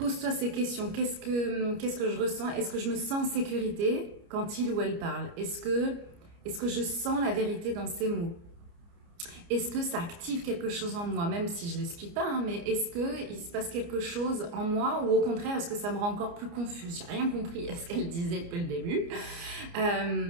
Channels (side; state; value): left; late; 29 ms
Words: ces questions. Qu'est-ce que je ressens? Est-ce que je me sens en sécurité quand il ou elle parle? Est-ce que je sens la vérité dans ces mots? est-ce que ça active quelque chose en moi, même si je l'explique pas, hein, mais est-ce qu'il se passe quelque chose en moi ou au contraire, est-ce que ça me rend encore plus confuse? J'ai rien compris à ce qu'elle disait depuis le début.